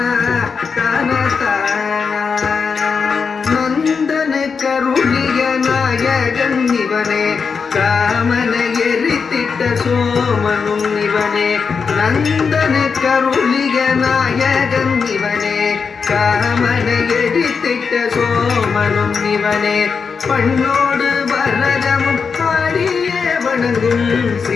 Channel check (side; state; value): right; quieter; 5.6 dB